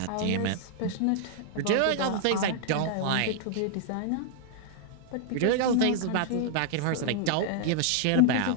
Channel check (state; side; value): different; both; correlation -0.01